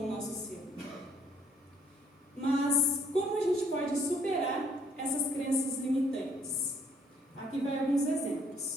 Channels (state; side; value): normal; both; correlation 0.65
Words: o nosso ser. Mas como a gente pode superar essas crenças limitantes? Aqui vai alguns